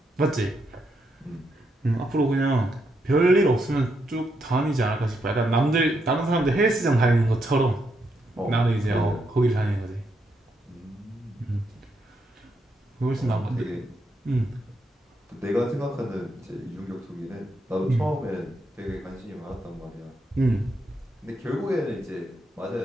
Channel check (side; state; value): both; normal; correlation 0.80